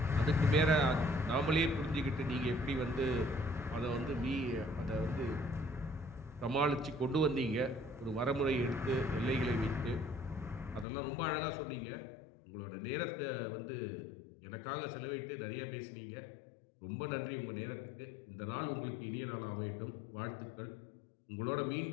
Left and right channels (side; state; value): right; drops out; at 10.9 s